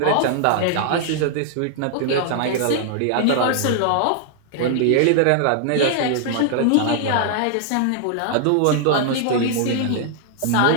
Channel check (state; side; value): different; both; correlation 0.00